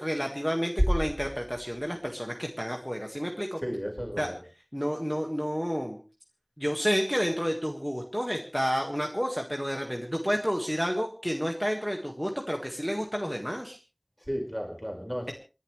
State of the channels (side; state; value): both; identical; correlation 1.00